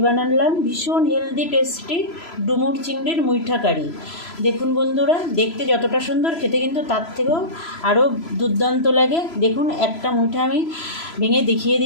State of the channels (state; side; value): late; right; 3.0 ms